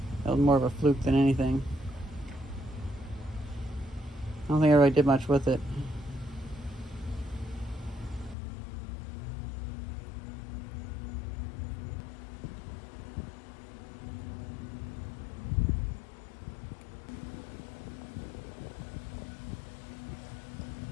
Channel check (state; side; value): drops out; right; at 8.3 s